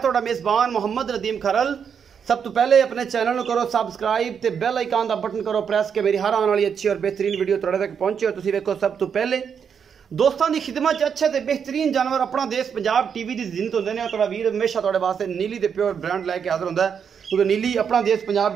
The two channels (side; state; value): left; quieter; 7.2 dB